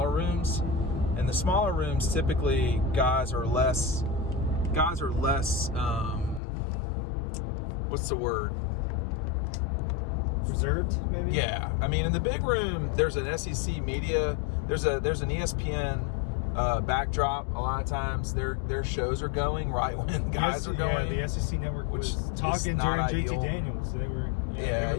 rooms. And the smaller rooms, typically, guys are less. What's the word? Reserved, maybe? Yeah. I mean, in the big room, there's an SEC media. There's an ESPN backdrop. A lot of times, their shows are going right when guys are going. Yeah, the SEC network was talking during JT Daniels. They were. Yeah,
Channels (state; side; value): drops out; right; at 6.4 s